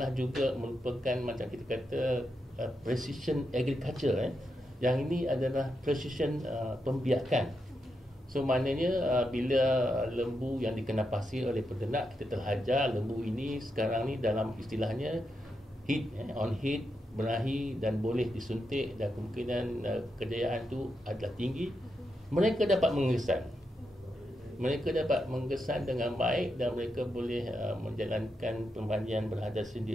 juga merupakan macam kita kata precision agriculture. Yang ini adalah precision pembiakan. So maknanya bila lembu yang dikenapasi oleh peternak, kita telah ajar lembu ini sekarang ni dalam istilahnya heat, on heat, berahi dan boleh disuntik dan kemungkinan kejayaan itu adalah tinggi. Mereka dapat menggesan dengan baik dan mereka boleh menjalankan permanian beradas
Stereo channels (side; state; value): both; normal; correlation 0.84